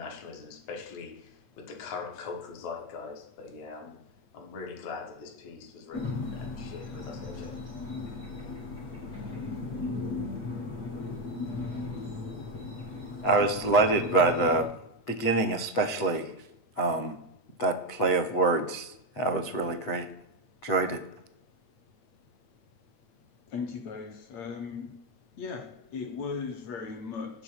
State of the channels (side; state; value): right; late; 8.1 ms